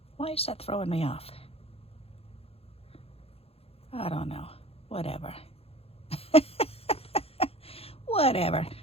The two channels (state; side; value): late; right; 0.29 ms